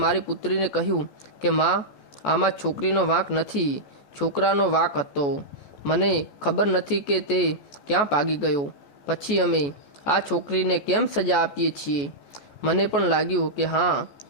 મારી પુત્રીને કહ્યું કે માં, આમાં છોકરીનો વાંક નથી, છોકરાનો વાંક હતો. મને ખબર નથી કે તે ક્યાં ભાગી ગયો. પછી અમે આ છોકરીને કેમ સજા આપીએ છીએ. મને પણ લાગ્યું કે હા,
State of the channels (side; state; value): right; late; 14 ms